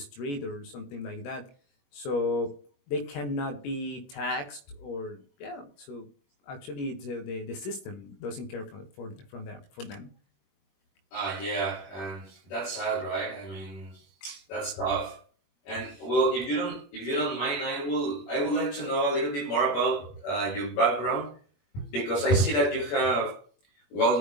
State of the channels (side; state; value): right; late; 21 ms